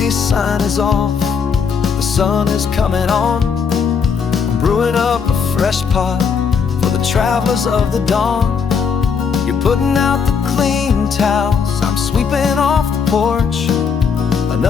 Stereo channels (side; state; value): right; quieter; 6.2 dB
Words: sign is off. The sun is coming on. I'm brewing up a fresh pot for the travelers of the dawn. You're putting out the clean towels, I'm sweeping off the porch.